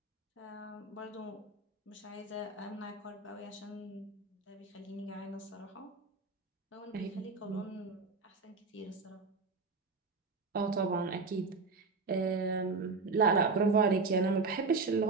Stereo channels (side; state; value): left; quieter; 4.2 dB